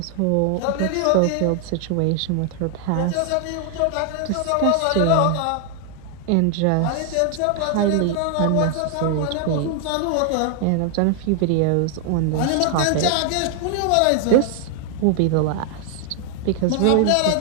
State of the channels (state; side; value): different; both; correlation 0.00